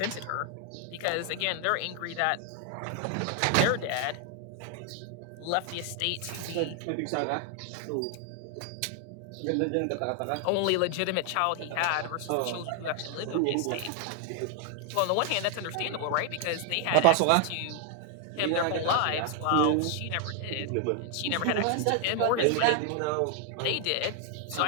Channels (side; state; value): both; different; correlation 0.00